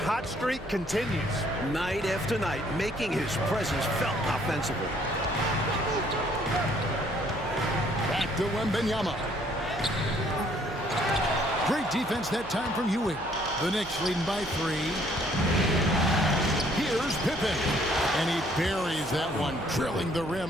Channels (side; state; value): right; noise; hum, 17 dB below the sound